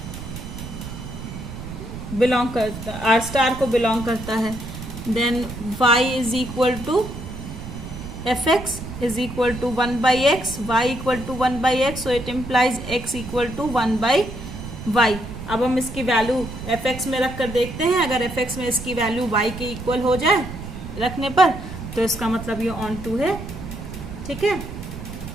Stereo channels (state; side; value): noise; right; rumble, 10 dB below the sound